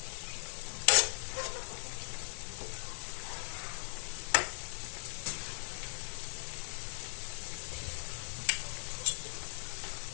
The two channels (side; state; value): right; silent; 52 dB below the other